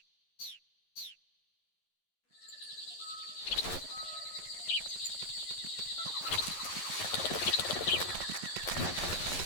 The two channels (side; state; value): right; late; 11 ms